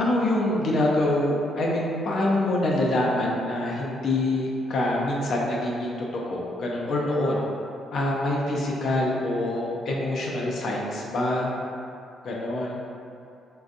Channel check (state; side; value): normal; both; correlation 0.73